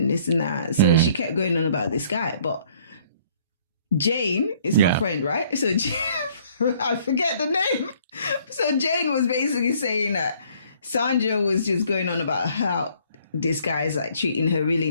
this and that. So she kept going on about this guy. But Jane is my friend, right? So I forget the name. So Jane was basically saying that Sandra was just going on about how this guy's like treating her really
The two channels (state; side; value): inverted; both; correlation -0.60